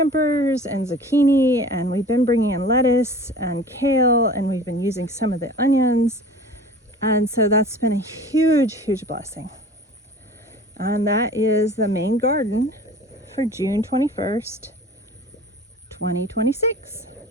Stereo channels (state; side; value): normal; both; correlation 0.42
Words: and zucchini, and we've been bringing in lettuce and kale, and we've been using some of the onions, and so that's been a huge blessing. And that is the main garden for June 21st, 2026.